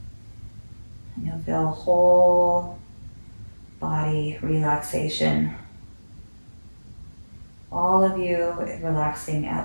And you'll feel whole body relaxation. All of you relaxing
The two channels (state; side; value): inverted; both; correlation -1.00